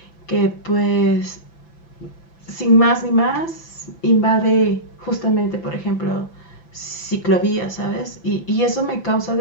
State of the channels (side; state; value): right; late; 5.9 ms